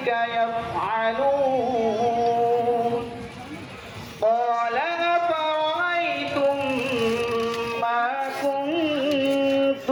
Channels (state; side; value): identical; both; correlation 1.00